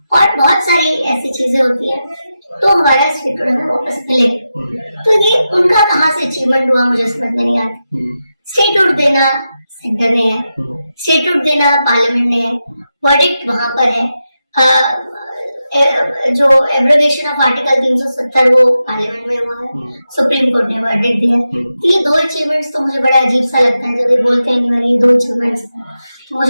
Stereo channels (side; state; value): both; inverted; correlation -0.90